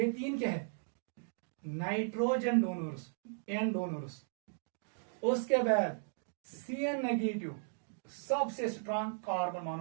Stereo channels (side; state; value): left; silent; digital silence